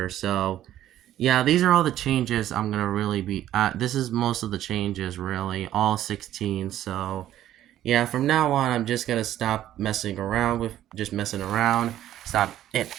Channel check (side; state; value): left; quieter; 12.5 dB